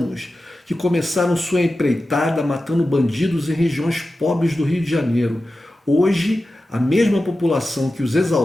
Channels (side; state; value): both; normal; correlation 0.93